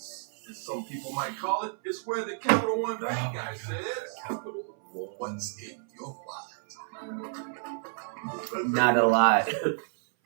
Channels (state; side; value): silent; left; 57 dB below the other